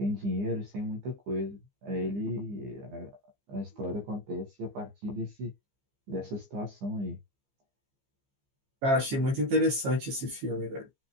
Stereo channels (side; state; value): left; late; 15 ms